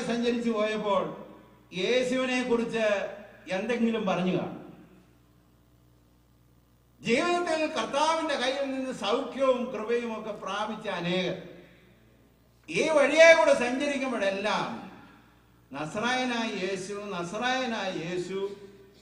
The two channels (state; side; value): identical; both; correlation 1.00